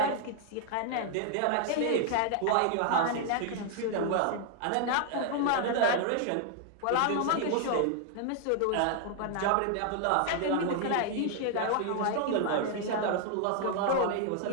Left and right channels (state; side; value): different; both; correlation 0.00